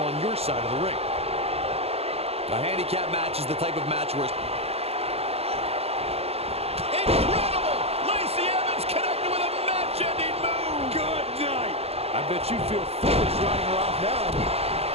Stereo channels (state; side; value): late; left; 0.29 ms